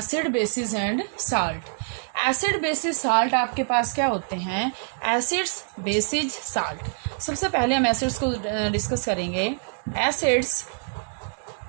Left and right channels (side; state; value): left; silent; 62 dB below the other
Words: bases and salt. Acid bases salt आपके पास क्या होते हैं? Acids bases salt. सबसे पहले हम एसिड्स को डिस्कस करेंगे। Acids